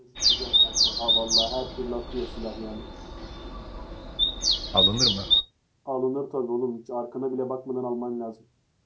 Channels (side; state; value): both; identical; correlation 1.00